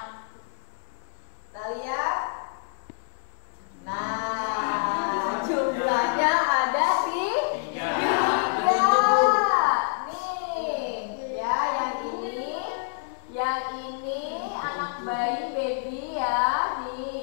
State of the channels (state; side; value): silent; right; digital silence